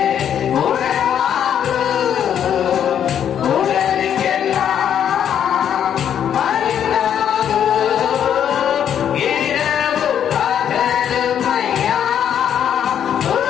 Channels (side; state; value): right; quieter; 9.2 dB